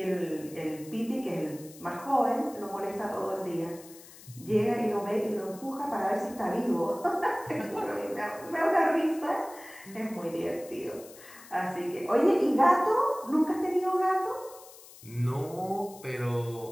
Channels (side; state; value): left; noise; hiss, 20 dB below the sound